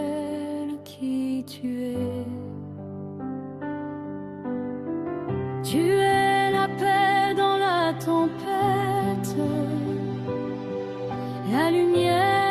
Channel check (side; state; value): both; identical; correlation 1.00